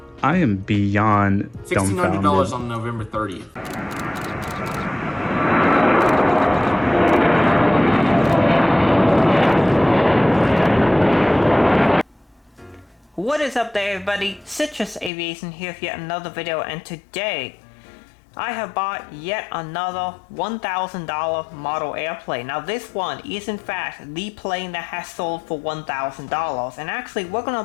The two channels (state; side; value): drops out; right; at 15.1 s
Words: I am beyond dumbfounded. $1,600 on November 30th. What is up there, everybody? Citrus Aviation here with yet another video, and today I have bought yet another $1,000 model airplane. Now this one is in fact the plane that has sold for $1,000, and actually we're going to